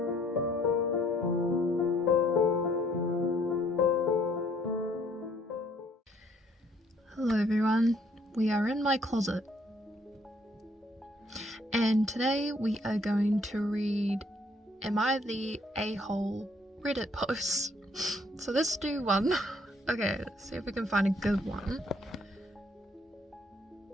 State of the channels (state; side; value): normal; both; correlation 0.64